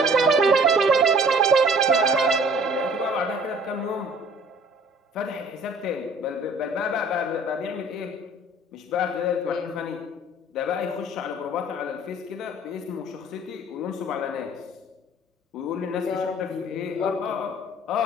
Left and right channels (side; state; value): both; normal; correlation 0.52